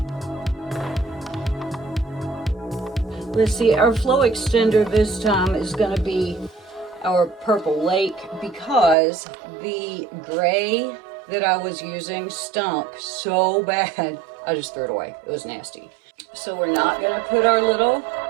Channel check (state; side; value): drops out; left; at 9.0 s